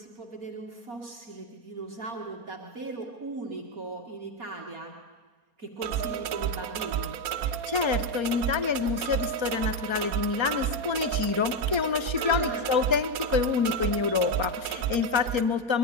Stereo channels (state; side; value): late; left; 4.3 ms